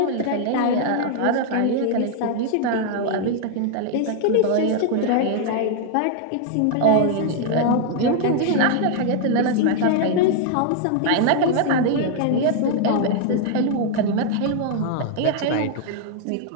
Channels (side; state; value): both; different; correlation 0.00